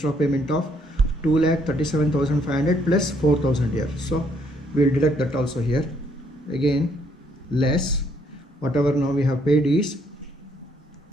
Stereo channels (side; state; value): both; normal; correlation 0.69